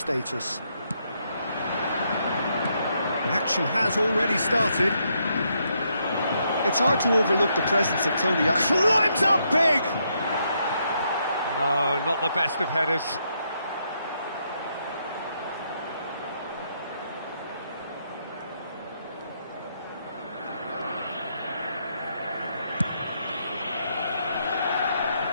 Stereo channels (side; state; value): both; inverted; correlation -0.77